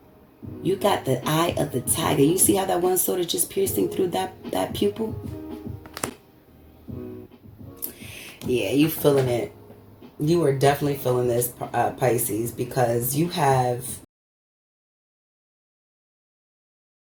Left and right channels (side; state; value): both; identical; correlation 1.00